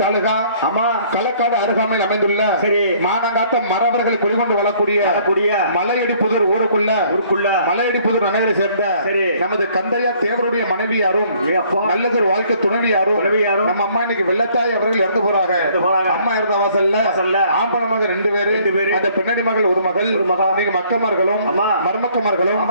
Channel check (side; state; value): both; inverted; correlation -0.60